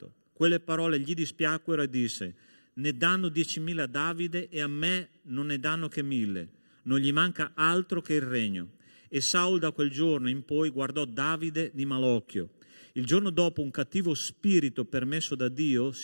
Quelle parole gli dispiacquero e disse: ne danno 10.000 a Davide e a me non ne danno che 1.000. Non gli manca altro che il regno. E Saul da quel giorno in poi guardò Davide di malocchio. Il giorno dopo un cattivo spirito permesso da Dio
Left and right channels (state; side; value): inverted; both; correlation -1.00